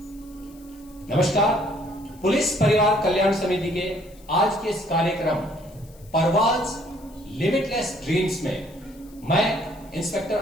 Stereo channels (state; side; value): noise; left; hiss, 26 dB below the sound